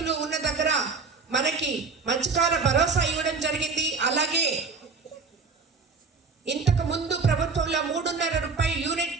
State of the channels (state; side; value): quieter; left; 4.6 dB